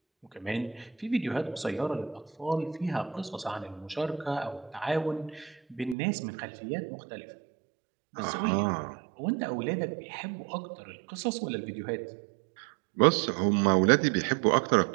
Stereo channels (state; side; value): drops out; left; at 6.0 s